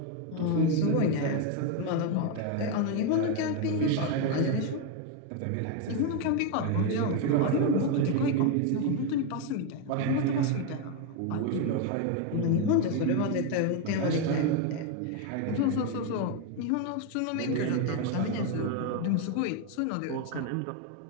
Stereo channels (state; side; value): different; both; correlation 0.02